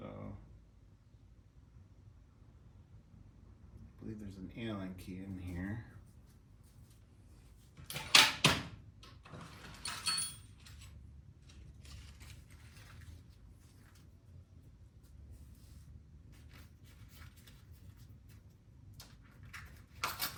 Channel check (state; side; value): identical; both; correlation 1.00